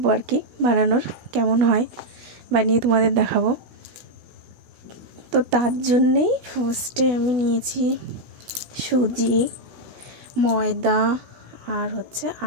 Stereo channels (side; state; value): left; late; 16 ms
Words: আর কি বানানোর, কেমন হয় বানিয়ে তোমাদের দেখাবো। তো তার জন্যেই ফার্স্টে আমি নিয়েছি সুজি, ময়দা আর হচ্ছে